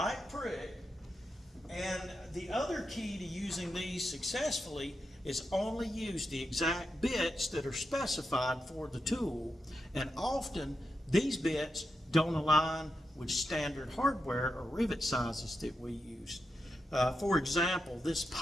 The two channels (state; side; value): normal; both; correlation 0.87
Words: prick. And the other key to using these successfully is only use the exact bits that are specified for the tool. And often these bits don't align with standard hardware or rivet sizes that we use. For example, this